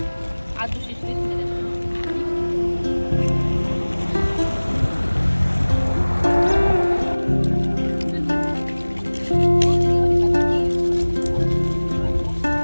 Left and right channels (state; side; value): inverted; both; correlation -1.00